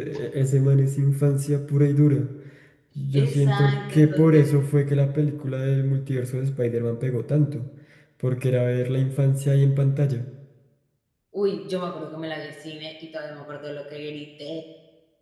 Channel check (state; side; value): identical; both; correlation 1.00